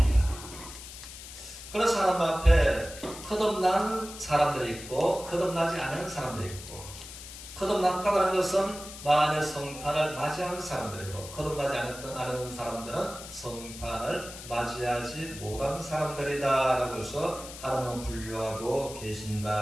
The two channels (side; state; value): left; noise; hiss, 13 dB below the sound